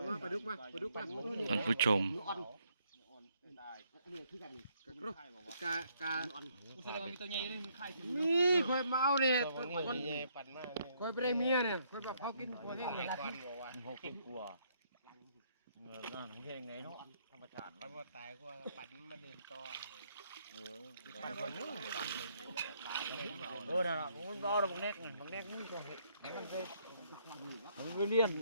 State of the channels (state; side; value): inverted; both; correlation -0.70